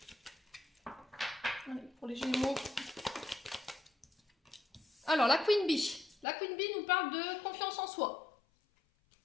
Allez, pour les Gémeaux. Alors, la Queen Bee. La Queen Bee nous parle de confiance en soi.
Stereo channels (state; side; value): drops out; right; at 6.2 s